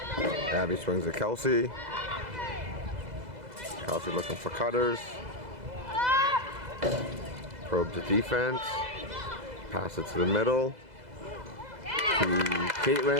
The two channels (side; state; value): left; late; 2.0 ms